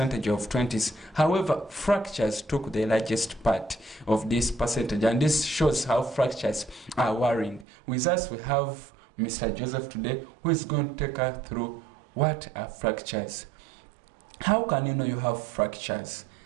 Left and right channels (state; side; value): drops out; left; at 7.7 s